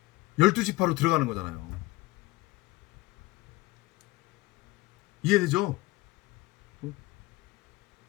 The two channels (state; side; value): quieter; right; 20.4 dB